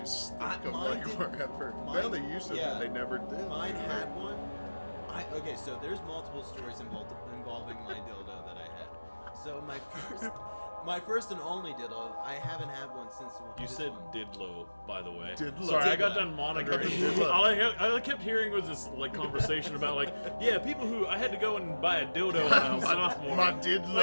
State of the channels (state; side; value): inverted; both; correlation -1.00